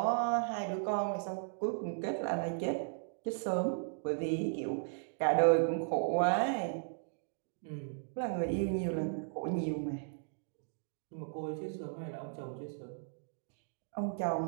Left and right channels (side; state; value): left; silent; digital silence